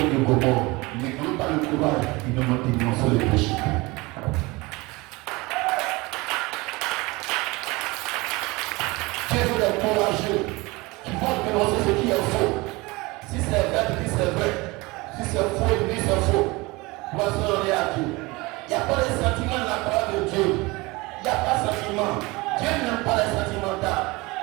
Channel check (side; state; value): left; quieter; 23.5 dB